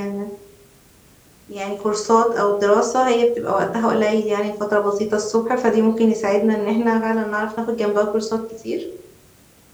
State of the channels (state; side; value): identical; both; correlation 1.00